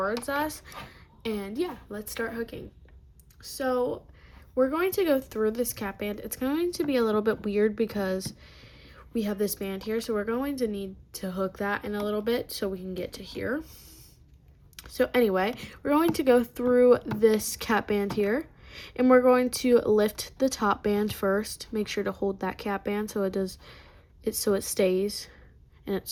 us. And yeah, let's start hooking. So we're going to go through this cap band. It's going to be a little bit weird because we have this band here, so we're going to need to hook that in a little bit so we can get to here. So anyway, we're going to go through this cap band here, and we're going to lift the top band first. Make sure to hold that cap band so it stays in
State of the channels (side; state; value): both; identical; correlation 1.00